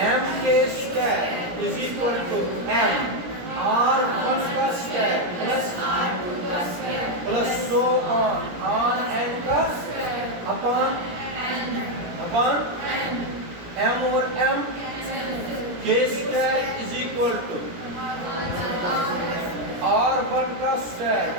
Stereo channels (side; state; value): left; late; 17 ms